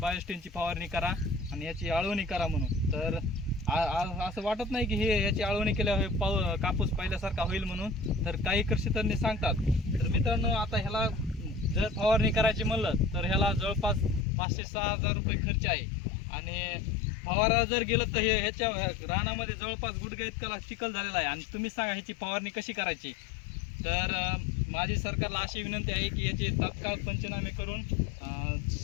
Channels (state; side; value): drops out; right; at 14.2 s